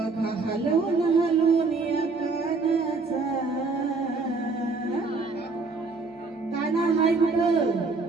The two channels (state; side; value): quieter; left; 4.0 dB